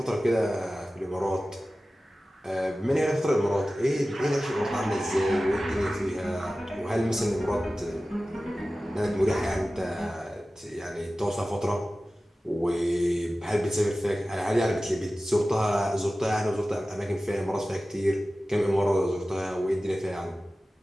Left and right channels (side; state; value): both; normal; correlation 0.96